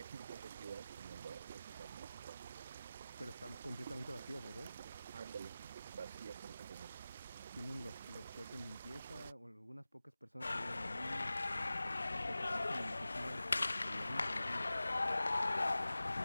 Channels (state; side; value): inverted; both; correlation -0.96